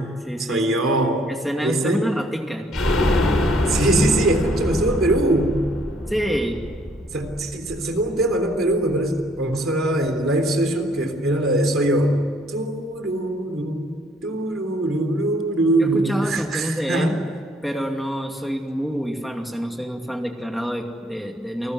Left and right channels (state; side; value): normal; both; correlation 0.64